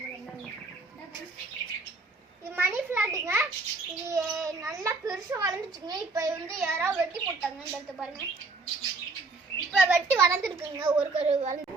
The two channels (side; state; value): left; quieter; 3.6 dB